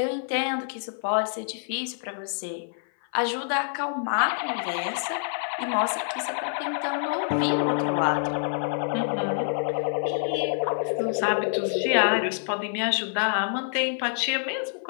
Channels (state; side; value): silent; right; 55 dB below the other